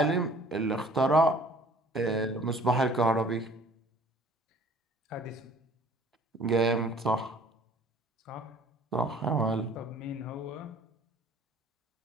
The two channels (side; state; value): both; normal; correlation 0.53